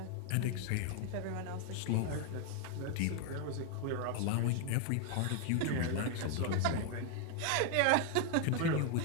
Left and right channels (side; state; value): both; different; correlation 0.00